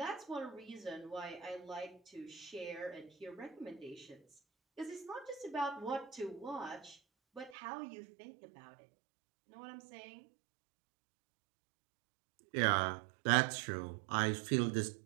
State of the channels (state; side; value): drops out; left; at 7.6 s